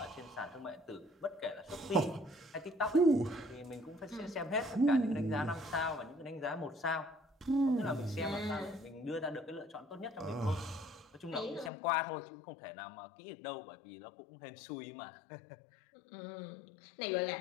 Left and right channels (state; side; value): drops out; right; at 11.7 s